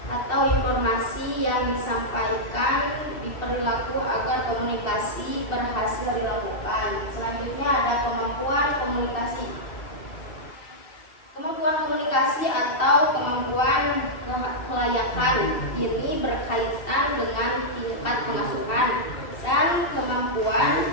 atau informasi yang disampaikan diperlaku agar komunikasi berhasil dilakukan. Selanjutnya ada kemampuan komunikasi. Kemampuan komunikasi atau kemampuan kelayakan ini berkaitan dengan tingkat pengasuhan dan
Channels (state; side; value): late; right; 2.7 ms